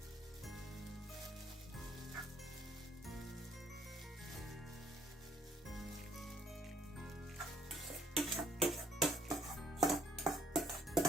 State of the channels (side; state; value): both; normal; correlation 0.65